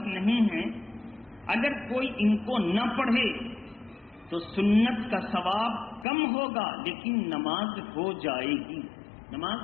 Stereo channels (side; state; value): right; drops out; at 6.1 s